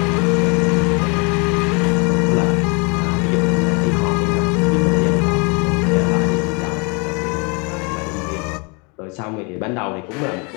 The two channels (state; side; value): quieter; right; 31.8 dB